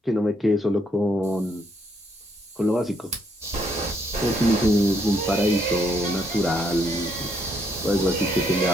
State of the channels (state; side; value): normal; both; correlation 0.72